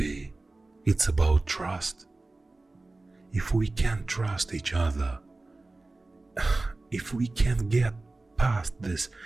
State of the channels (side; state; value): left; quieter; 3.2 dB